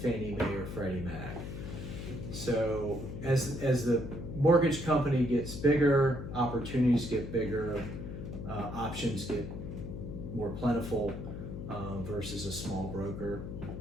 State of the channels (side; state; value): left; noise; hum, 7 dB below the sound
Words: Fannie Mae or Freddie Mac. So as the mortgage company gets bigger, opportunities get bigger, options get more plentiful versus a small broker.